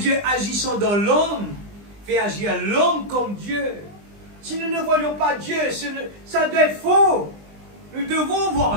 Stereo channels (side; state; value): left; late; 20 ms